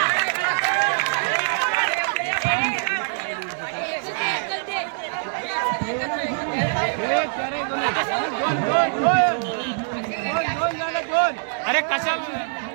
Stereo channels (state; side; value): silent; left; digital silence